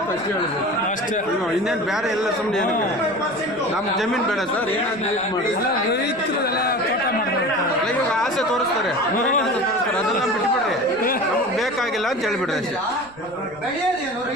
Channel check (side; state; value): right; noise; rumble, 25 dB below the sound